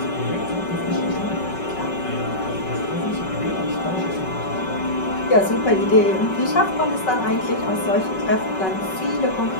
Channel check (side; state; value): right; late; 5.3 ms